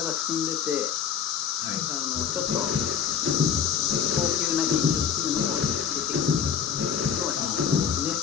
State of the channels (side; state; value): right; quieter; 8.0 dB